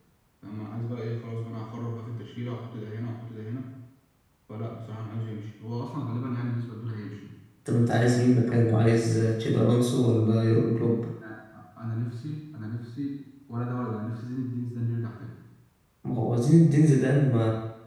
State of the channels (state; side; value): identical; both; correlation 1.00